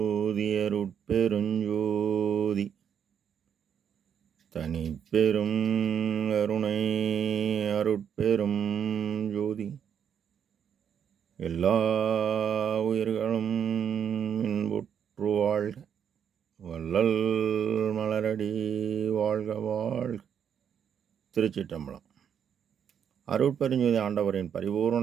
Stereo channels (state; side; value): quieter; left; 8.2 dB